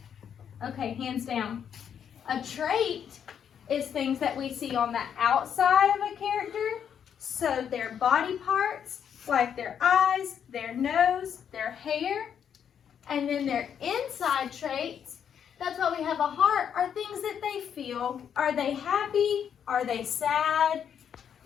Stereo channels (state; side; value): quieter; right; 8.3 dB